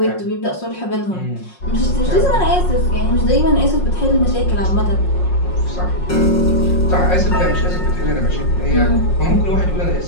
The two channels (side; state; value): right; late; 5.5 ms